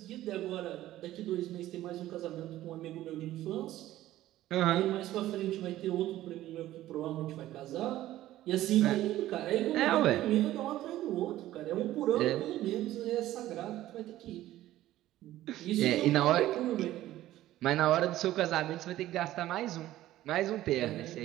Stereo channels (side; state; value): left; quieter; 14.6 dB